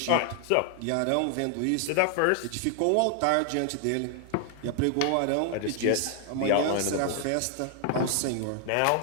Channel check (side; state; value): both; different; correlation 0.00